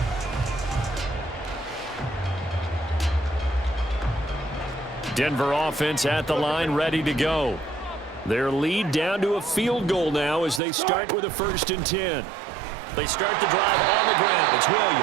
Denver offense at the line, ready to go. Their lead down to a field goal now as they start with a 1st and 10. They start the drive on the ground. It's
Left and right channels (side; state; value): left; drops out; at 10.6 s